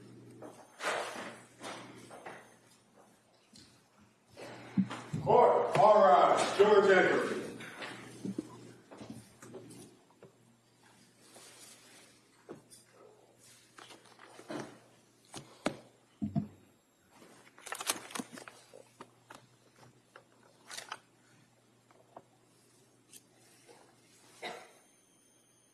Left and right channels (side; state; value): both; identical; correlation 1.00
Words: Court, all rise. Jurors enter.